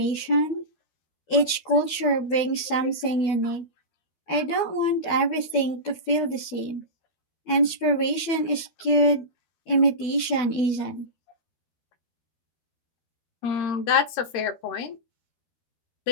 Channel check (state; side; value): late; right; 12 ms